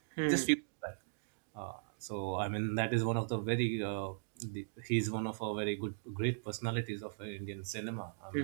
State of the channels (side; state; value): left; silent; digital silence